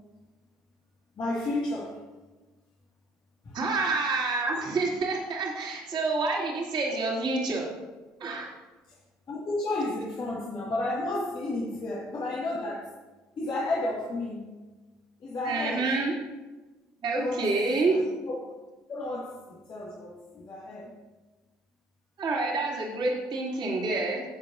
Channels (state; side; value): normal; both; correlation 0.61